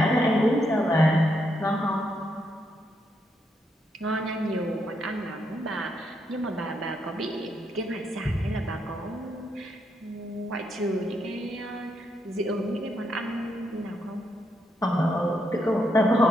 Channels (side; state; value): both; normal; correlation 0.79